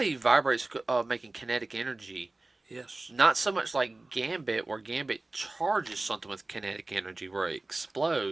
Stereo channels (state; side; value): quieter; left; 3.0 dB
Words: he vibrates, making kinetic energy. Yes. Not so much like Gambit, where Gambit charges something with kinetic energy where it